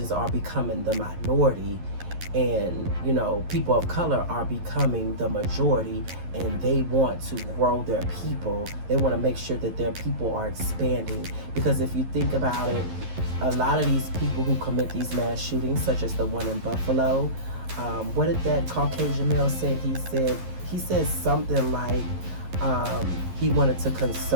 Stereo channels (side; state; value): left; late; 11 ms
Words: are becoming the minority, and people of color are becoming the majority, and they want to grow their people. They want to make sure that their people are expanding, because if you think about it, a lot of these people who commit these mass shootings, such as the one in Buffalo, what did that Caucasian male say? He said something like he wanted to